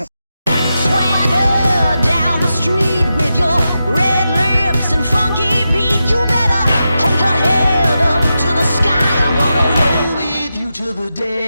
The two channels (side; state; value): both; inverted; correlation -0.89